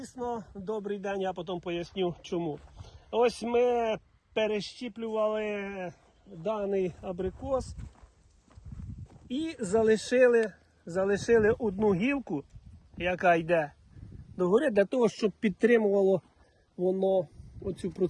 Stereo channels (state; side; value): identical; both; correlation 1.00